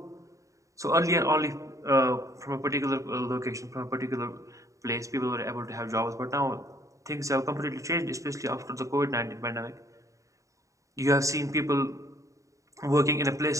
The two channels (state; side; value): late; left; 0.16 ms